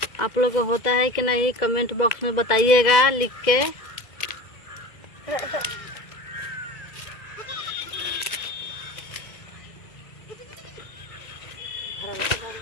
आप लोग को होता है कि नहीं, कमेंट बॉक्स में बताइएगा लिख के।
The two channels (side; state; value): right; late; 2.0 ms